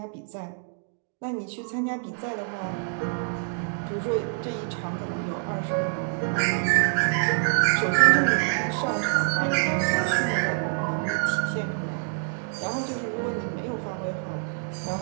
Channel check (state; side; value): silent; left; 58 dB below the other